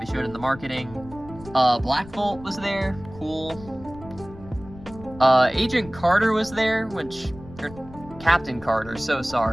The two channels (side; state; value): left; noise; rumble, 18 dB below the sound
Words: showed in the marketing. Black Bolt was there. Cool. Agent Carter was there, or Captain Carter, so